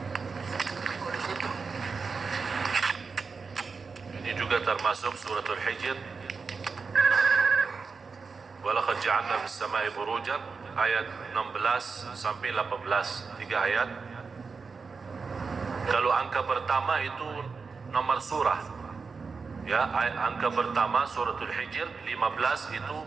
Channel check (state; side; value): quieter; left; 4.9 dB